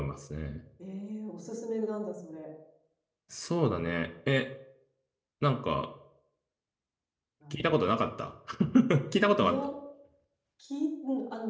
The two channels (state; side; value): identical; both; correlation 1.00